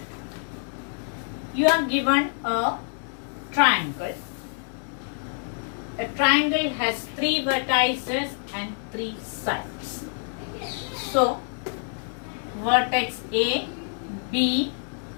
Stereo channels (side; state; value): right; silent; 56 dB below the other